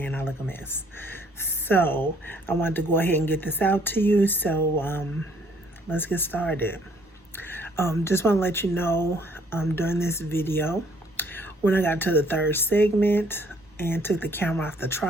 I look a mess. So I wanted to go ahead and get this out to you. So let's get started. Just want to let you know during this video, when I got to the third segment and took the camera off the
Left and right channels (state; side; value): normal; both; correlation 0.62